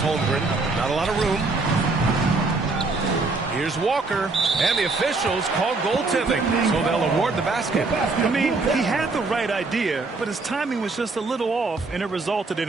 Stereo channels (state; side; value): quieter; left; 3.7 dB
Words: Holmgren. Not a lot of room. Here's Walker, and the officials call goaltending, so they'll award the basket. I mean, he had the right idea, but his timing was just a little off, and it resulted